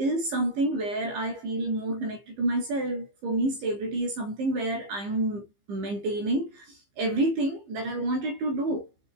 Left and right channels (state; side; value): late; left; 15 ms